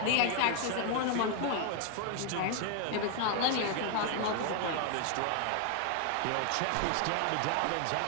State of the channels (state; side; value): different; both; correlation 0.00